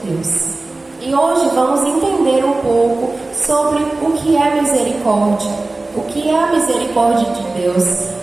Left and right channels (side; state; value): left; quieter; 3.2 dB